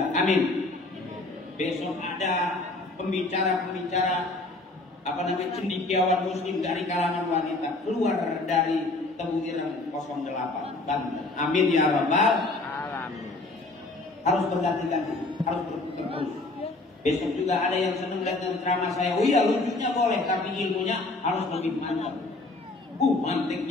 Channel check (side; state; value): right; quieter; 3.1 dB